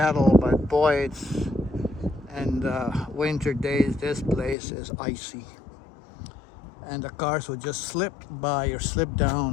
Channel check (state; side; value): drops out; right; at 4.5 s